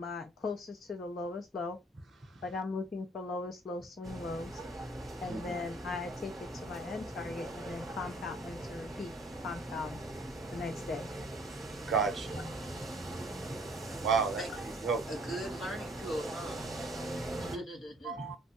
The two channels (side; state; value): both; normal; correlation 0.59